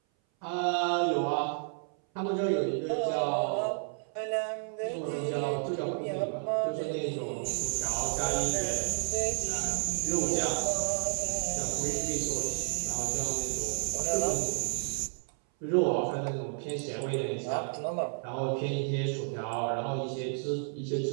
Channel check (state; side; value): silent; left; 57 dB below the other